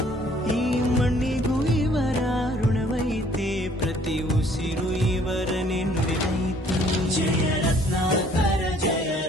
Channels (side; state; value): both; normal; correlation 0.60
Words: ಈ ಮಣ್ಣಿಗೂ ಇವರ ಋಣವೈತೆ, ಪ್ರತಿ ಉಸಿರು ಇವರನೆ ನುಡಿದೈತೆ. ಜಯ ರತ್ನಾಕರ ಜಯ